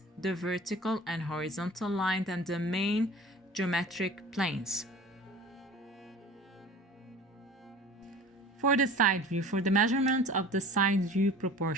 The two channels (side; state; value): both; normal; correlation 0.42